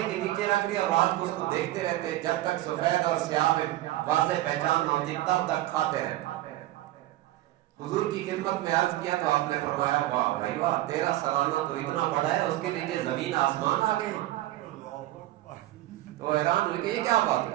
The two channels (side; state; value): left; quieter; 15.9 dB